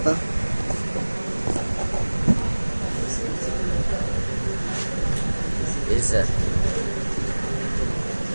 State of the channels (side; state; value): both; inverted; correlation -1.00